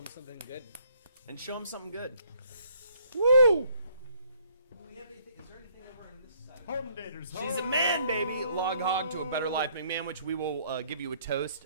something good. And show him something good. Woo! Do we have anything? Is there anything over on this side? She's a man, baby. Log hog to a better life, McMahon, which we will give you a toast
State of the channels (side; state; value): both; inverted; correlation -0.65